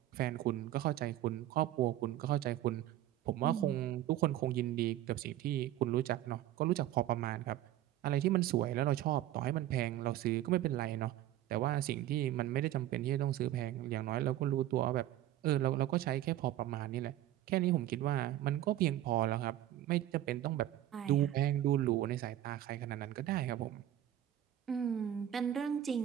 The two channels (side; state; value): left; quieter; 13.2 dB